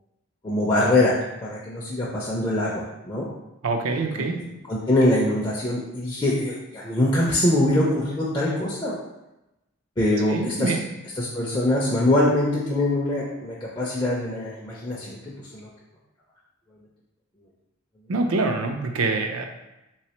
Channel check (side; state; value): both; normal; correlation 0.47